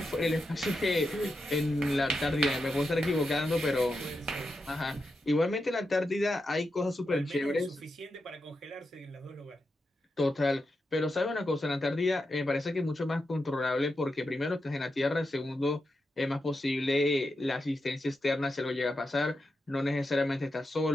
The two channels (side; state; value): both; normal; correlation 0.87